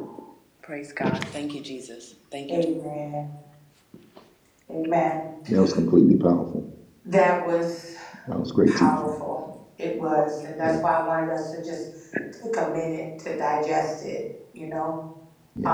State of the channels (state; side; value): identical; both; correlation 1.00